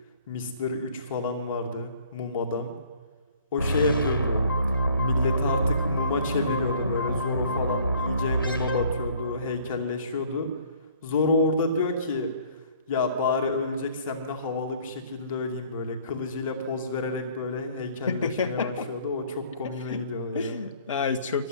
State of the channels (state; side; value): inverted; both; correlation -0.56